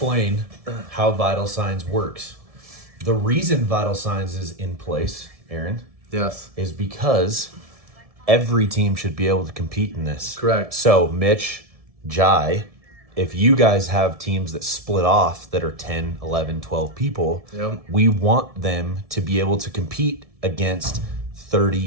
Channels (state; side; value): late; left; 1.7 ms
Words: how Vital Signs works. The reason Vital Signs is in place, Aaron, Yes. is because every team should be able to compete in this. Correct. So, Mitch, Jai, if you guys have teams that split off that are 10, 11, 12 people, Yep. we want them to be able to compete against